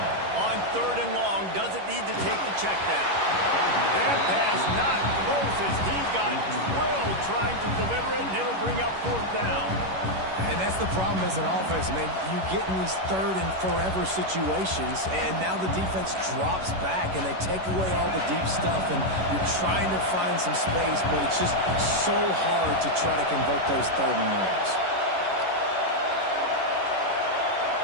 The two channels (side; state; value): left; late; 11 ms